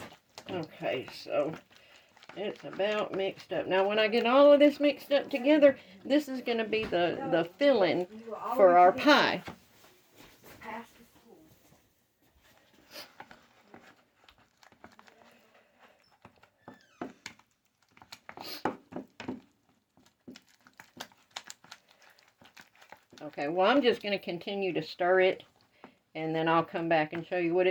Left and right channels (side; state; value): both; identical; correlation 1.00